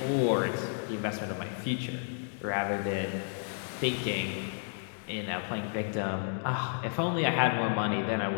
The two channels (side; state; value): right; silent; digital silence